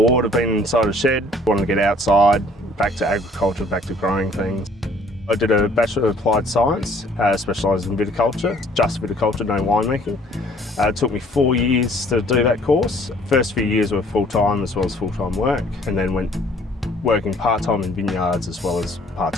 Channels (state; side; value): normal; both; correlation 0.57